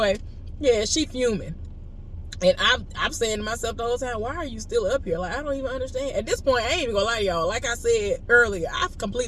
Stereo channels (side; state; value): both; identical; correlation 1.00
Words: yeah, she fuming. And I'm saying to myself the whole time, why are you still up here? Like, I don't even understand. At this point, I ain't even gonna lie to y'all. Like I said earlier, I